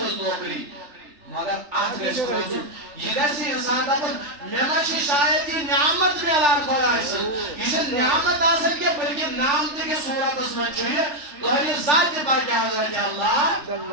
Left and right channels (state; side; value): late; left; 3.4 ms